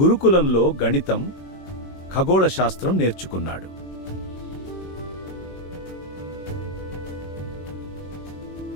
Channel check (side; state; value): right; late; 21 ms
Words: గురుకులంలో గణితం, ఖగోళ శాస్త్రం నేర్చుకున్నాడు.